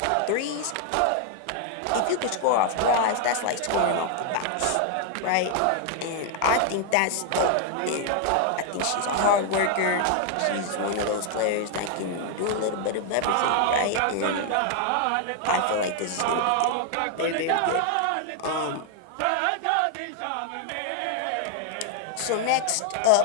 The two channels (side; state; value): both; different; correlation 0.00